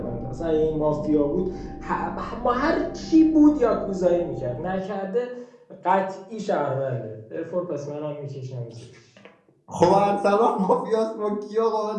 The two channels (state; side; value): identical; both; correlation 1.00